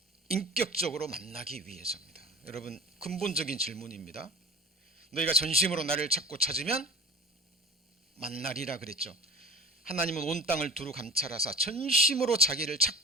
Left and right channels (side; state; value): both; normal; correlation 0.36